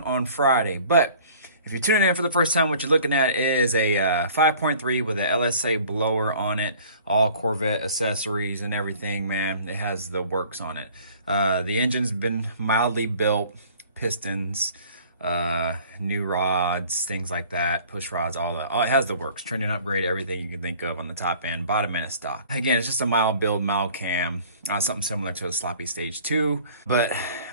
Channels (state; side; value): inverted; both; correlation -0.50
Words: on Friday. But if you're tuning in for the first time, what you're looking at is a 5.3 with an LSA blower on it, all Corvette accessories and everything, man. It has the works on it. The engine's been mildly built, pistons, new rods, things like that, push rods, all that. It has the works, trending upgrade, everything you can think of on the top end, bottom end is stock. Again, it's just a mild build, mild cam, something similar to a sloppy stage 2. But